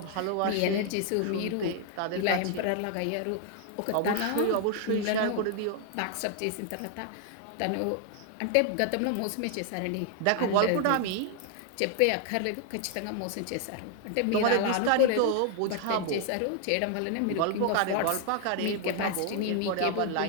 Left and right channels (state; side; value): different; both; correlation 0.00